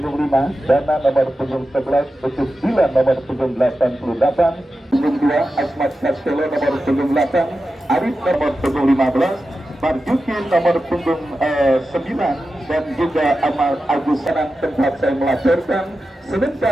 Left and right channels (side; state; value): both; normal; correlation 0.92